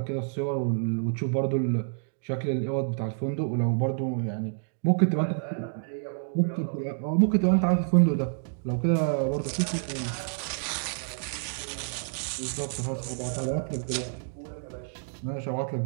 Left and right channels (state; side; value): silent; left; digital silence